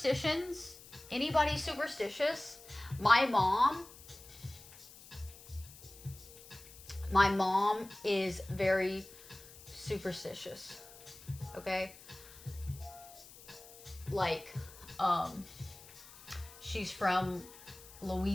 Anybody superstitious? My mom is very superstitious. Okay? Like, she's from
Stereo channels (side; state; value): left; noise; hiss, 19 dB below the sound